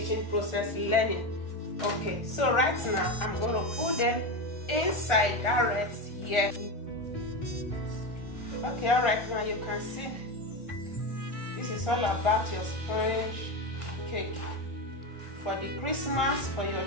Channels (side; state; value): right; late; 1.4 ms